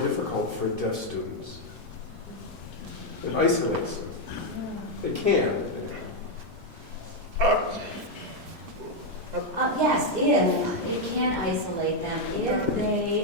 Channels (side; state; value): right; late; 3.0 ms